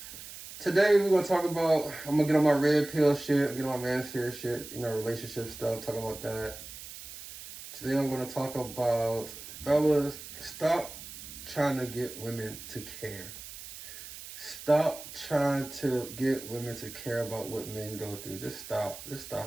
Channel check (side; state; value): right; noise; hiss, 13 dB below the sound